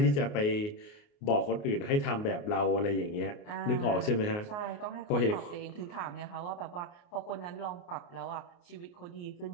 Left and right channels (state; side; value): late; right; 29 ms